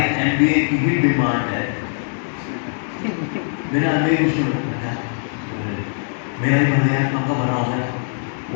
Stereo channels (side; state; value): right; silent; 65 dB below the other